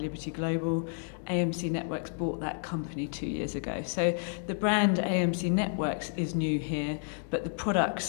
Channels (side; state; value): right; silent; 57 dB below the other